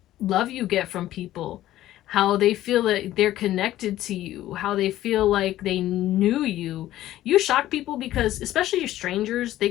love you get from people, how they feel that they're connected to you, how they feel like they knew you. You shock people because, especially your strangers, they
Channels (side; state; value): right; quieter; 14.1 dB